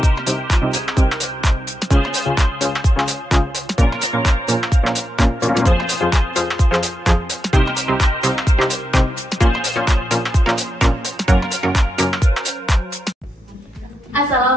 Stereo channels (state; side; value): normal; both; correlation 0.87